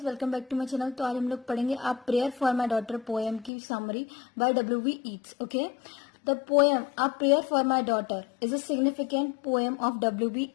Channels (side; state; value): right; drops out; at 3.5 s